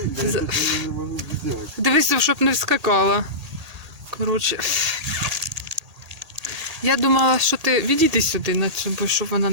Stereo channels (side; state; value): left; late; 1.8 ms